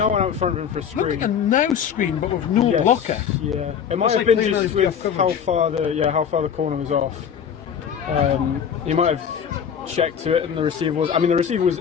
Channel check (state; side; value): quieter; right; 7.8 dB